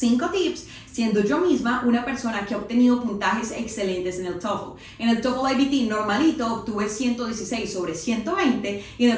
tips, siendo yo misma una persona que ha obtenido puntajes excelentes en el TOEFL. En el TOEFL IBT normalito obtuve 116 sobre 120 y en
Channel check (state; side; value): identical; both; correlation 1.00